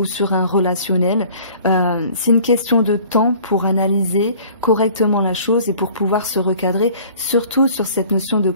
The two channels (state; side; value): inverted; both; correlation -0.50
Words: sur un relationnel, c'est une question de temps pour analyser correctement la chose et pour pouvoir se recadrer, surtout sur cette notion de